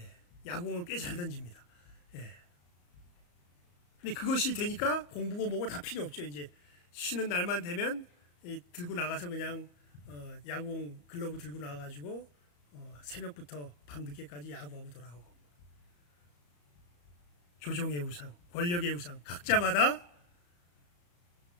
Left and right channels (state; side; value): late; right; 34 ms